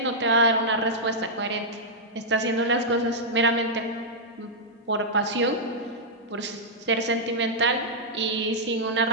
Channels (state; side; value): normal; both; correlation -0.08